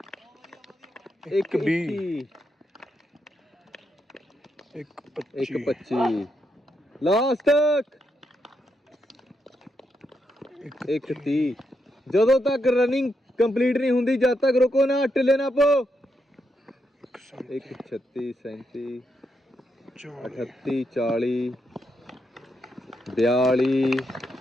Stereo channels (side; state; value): both; normal; correlation 0.81